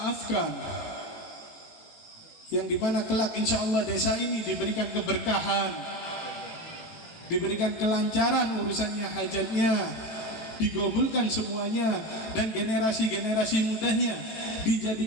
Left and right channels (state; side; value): late; right; 19 ms